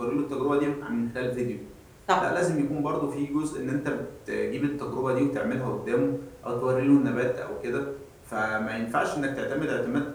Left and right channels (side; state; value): both; identical; correlation 1.00